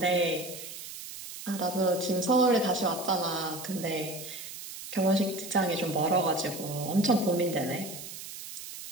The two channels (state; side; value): noise; right; hiss, 11 dB below the sound